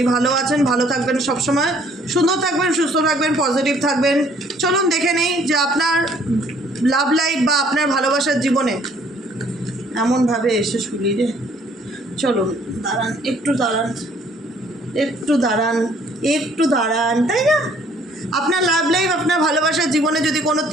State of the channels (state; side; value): normal; both; correlation 0.60